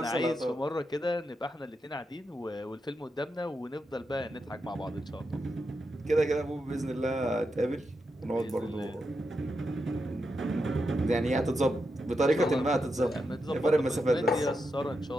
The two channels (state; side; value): normal; both; correlation 0.86